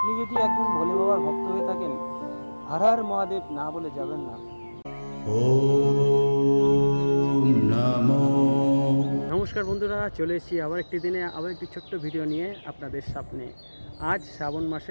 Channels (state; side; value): inverted; both; correlation -1.00